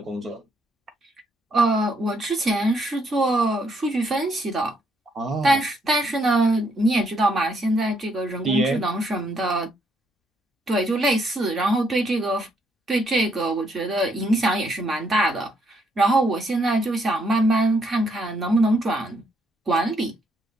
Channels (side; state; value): both; normal; correlation 0.73